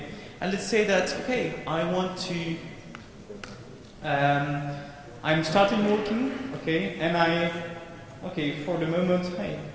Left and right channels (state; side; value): identical; both; correlation 1.00